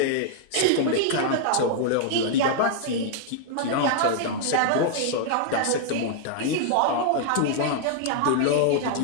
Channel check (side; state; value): both; different; correlation -0.01